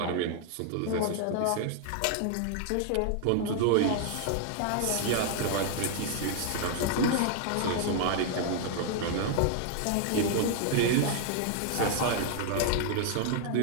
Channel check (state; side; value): different; both; correlation 0.00